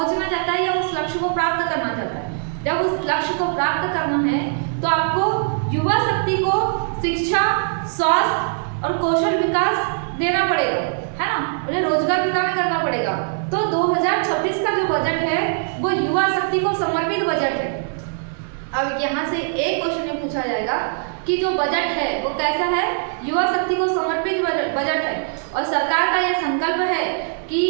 चाहता है या उस लक्ष्य को प्राप्त करना चाहता है। जब उस लक्ष्य को प्राप्त करना है तो आपको युवा शक्ति को शिक्षा, स्वास्थ्य और कौशल विकास देना पड़ेगा, है ना, उन्हें रोजगार प्रदान करना पड़ेगा। तो 2026 का जो बजट है वो युवा शक्ति को समर्पित बजट है। अब यहाँ से एक क्वेश्चन में पूछा जाएगा कि जो बजट है वो कैसा है, युवा शक्ति को समर्पित बजट है, और सरकार का यह संकल्प है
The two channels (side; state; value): left; silent; 65 dB below the other